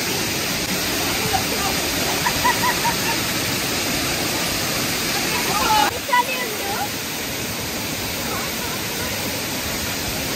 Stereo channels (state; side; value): identical; both; correlation 1.00